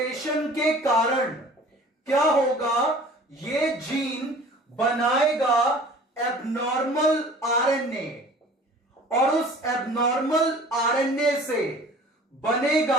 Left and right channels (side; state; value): both; normal; correlation 0.46